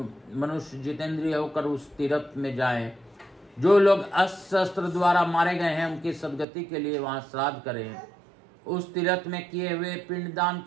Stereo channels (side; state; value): left; drops out; at 6.5 s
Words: मनुष्य जितेंद्रिय होकर उस तीर्थ में जाएं। जो लोग अस्त्र शस्त्र द्वारा मारे गए हैं उनकी सदगति के लिए वहां श्राद्ध करें। उस तीर्थ में किए हुए पिंडदान